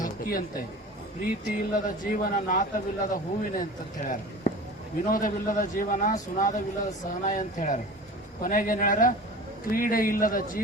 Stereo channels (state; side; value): normal; both; correlation 0.37